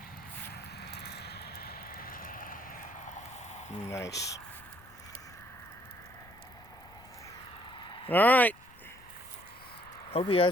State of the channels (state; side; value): noise; left; rumble, 23 dB below the sound